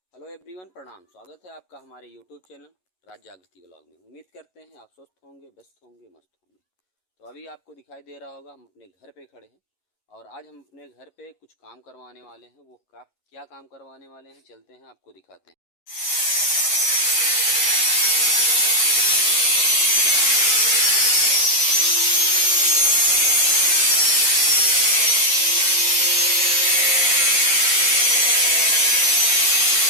Hello everyone, प्रणाम। स्वागत है आपका हमारे यूट्यूब चैनल राज जागृति व्लॉग में। उम्मीद करते हैं आप स्वस्थ होंगे, व्यस्त होंगे, मस्त होंगे। तो अभी आपको दिखाई दे रहा होगा हम अपने घर पे खड़े हैं और आज हम अपने घर पे कुछ काम करवाने वाले हैं। वो क्या काम करवाने वाले हैं, चलते हैं आपको दिखाते हैं।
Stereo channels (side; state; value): right; late; 11 ms